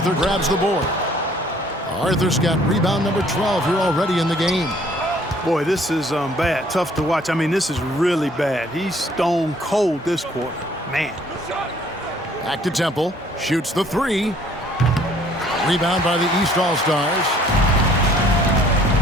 grabs the board. Arthur's got rebound number 12 here already in the game. Boy, this is bad. Tough to watch. I mean, this is really bad. He's stone cold this quarter. Man. Back to Temple. Shoots the 3. Rebound by the East All-Stars.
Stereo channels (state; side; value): normal; both; correlation 0.59